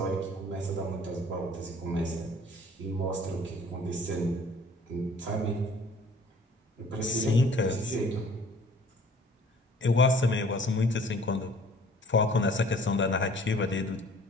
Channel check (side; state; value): both; normal; correlation 0.53